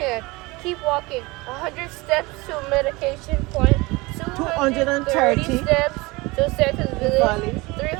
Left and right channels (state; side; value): quieter; left; 23.4 dB